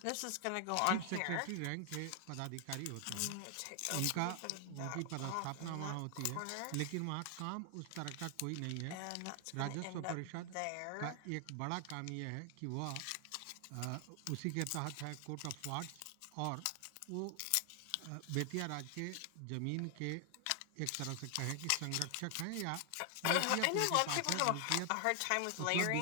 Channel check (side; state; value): both; different; correlation 0.00